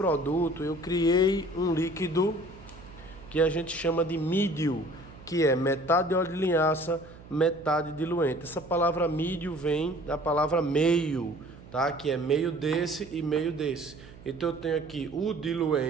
eu criei um líquido que a gente chama de mídio, que é metade óleo de linhaça, metade diluente. Essa palavra mídio vem da palavra meio, tá? Que é meio desse e meio desse. Então eu tenho aqui o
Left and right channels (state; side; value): noise; right; hum, 19 dB below the sound